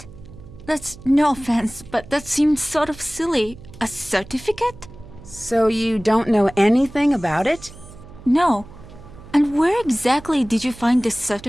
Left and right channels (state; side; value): noise; right; hum, 18 dB below the sound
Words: That's no offense, but that seems sort of silly. A certificate? So you don't know anything about it? No. And where exactly did you find this